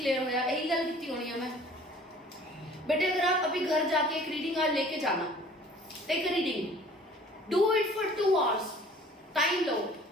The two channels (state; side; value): normal; both; correlation 0.51